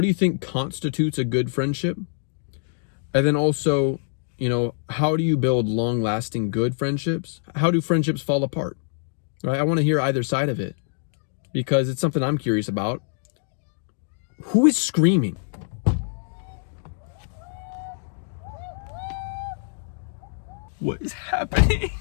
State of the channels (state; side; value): silent; right; digital silence